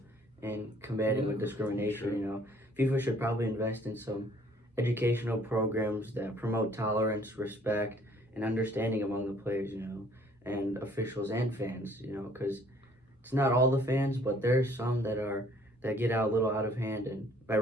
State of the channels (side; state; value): both; normal; correlation 0.59